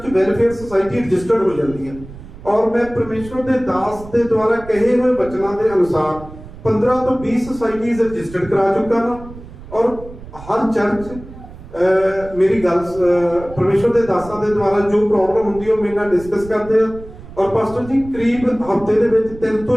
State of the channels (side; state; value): right; noise; rumble, 16 dB below the sound